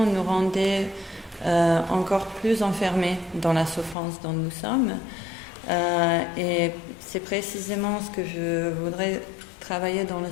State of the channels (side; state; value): right; drops out; at 4.0 s